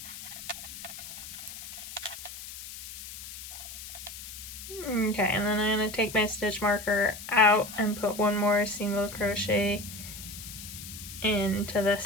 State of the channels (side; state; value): left; noise; hiss, 11 dB below the sound